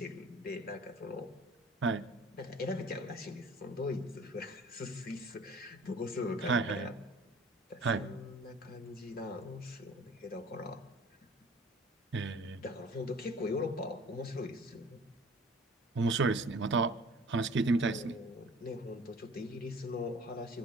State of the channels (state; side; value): normal; both; correlation 0.48